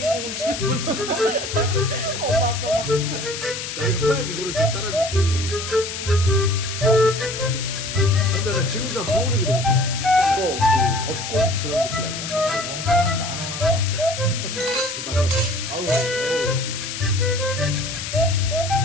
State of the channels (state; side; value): noise; left; hiss, 6 dB below the sound